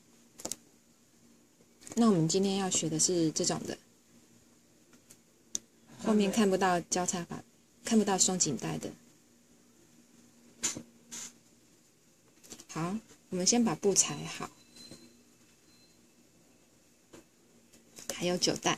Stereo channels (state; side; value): identical; both; correlation 1.00